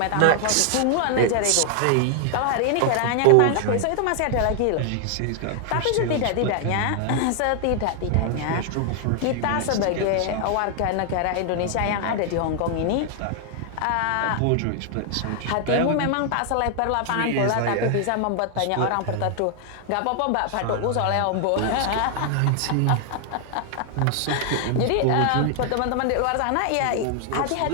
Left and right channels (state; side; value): different; both; correlation 0.00